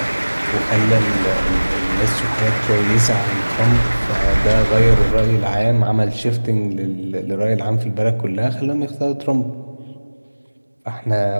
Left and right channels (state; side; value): inverted; both; correlation -1.00